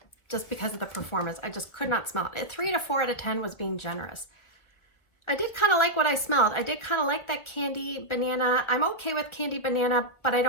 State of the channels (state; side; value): late; right; 1.5 ms